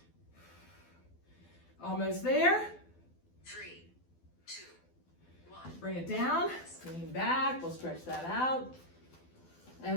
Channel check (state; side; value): late; right; 12 ms